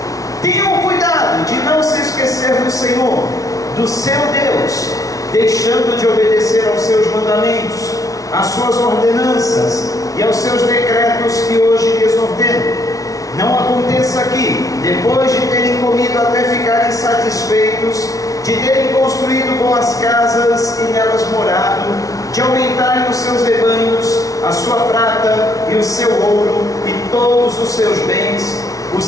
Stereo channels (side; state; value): right; late; 0.17 ms